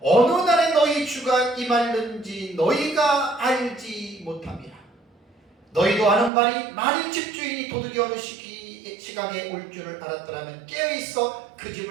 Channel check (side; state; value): left; drops out; at 6.3 s